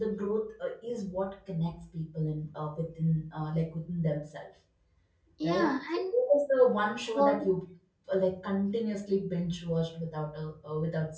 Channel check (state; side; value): identical; both; correlation 1.00